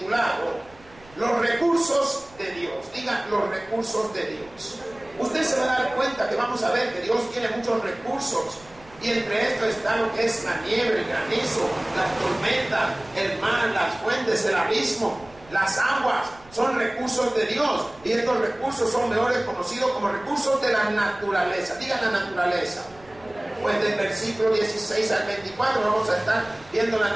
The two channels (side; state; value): right; noise; rumble, 25 dB below the sound